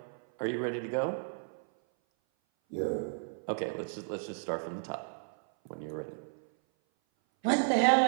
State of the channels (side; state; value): left; silent; 56 dB below the other